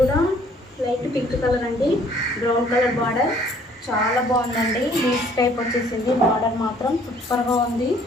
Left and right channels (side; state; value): both; normal; correlation 0.59